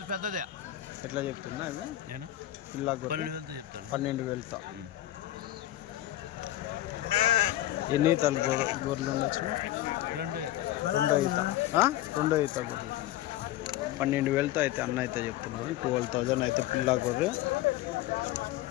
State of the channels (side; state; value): right; quieter; 14.4 dB